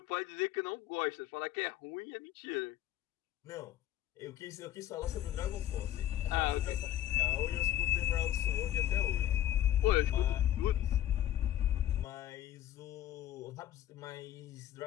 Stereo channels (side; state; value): right; quieter; 12.2 dB